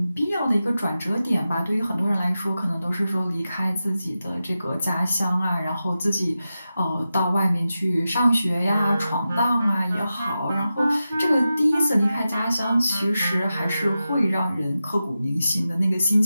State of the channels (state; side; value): inverted; both; correlation -0.92